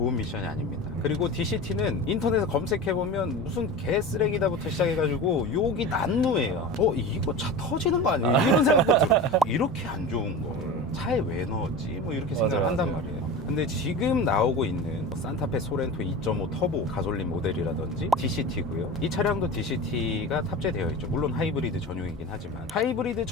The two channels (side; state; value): both; normal; correlation 0.31